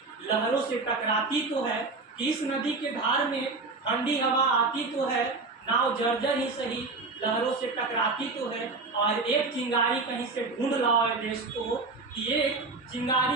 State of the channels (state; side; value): quieter; left; 3.8 dB